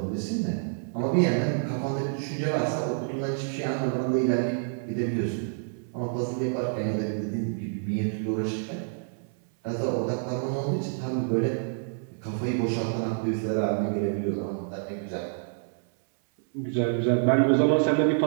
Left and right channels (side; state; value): left; silent; 60 dB below the other